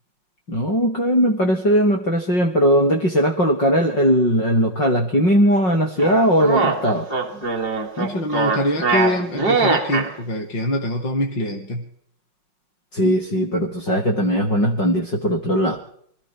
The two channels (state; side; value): late; right; 5.5 ms